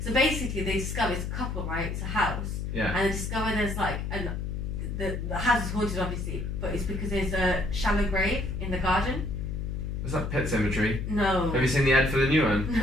So basically, they discover it's a couple, right? It's a house. Yeah. And they discover there's and the house is haunted, obviously, but it's because there's a shallow grave in the garden. Was that Pet Sematary? No. Have you seen the ad for the new one?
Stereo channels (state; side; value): noise; left; hum, 3 dB below the sound